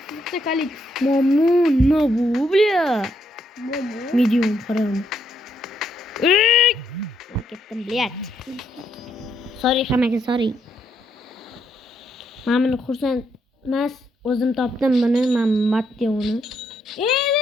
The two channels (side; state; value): both; normal; correlation 0.75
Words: Kalix. Momo, no bu, bля. Momo. Medium qaram. Ketdim, блядь. Sorry hammaga, sorry. Men buni xursand emas, o'zim topdim buni, men Matteoni.